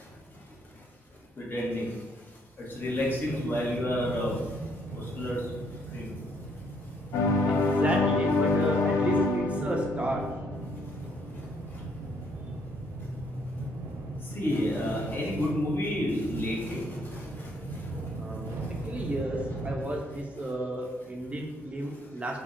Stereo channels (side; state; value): both; normal; correlation 0.68